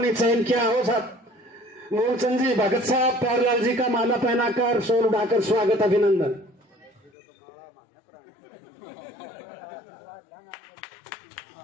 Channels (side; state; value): right; drops out; at 7.1 s